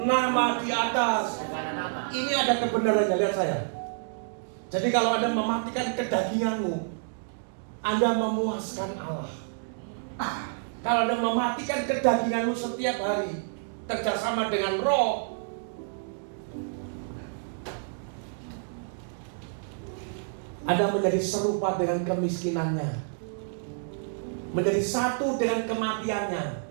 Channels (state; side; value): silent; left; digital silence